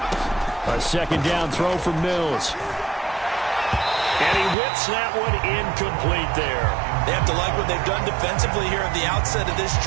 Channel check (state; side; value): drops out; left; at 4.5 s